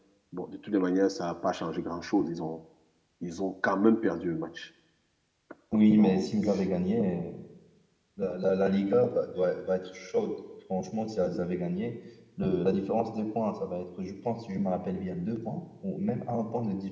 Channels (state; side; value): identical; both; correlation 1.00